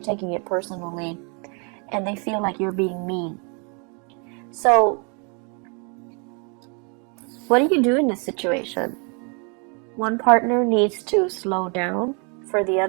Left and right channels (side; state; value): left; quieter; 35.9 dB